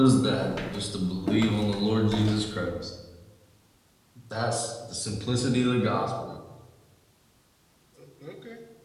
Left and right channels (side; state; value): both; identical; correlation 1.00